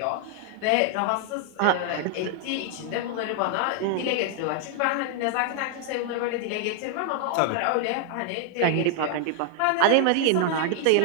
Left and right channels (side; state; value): both; different; correlation 0.00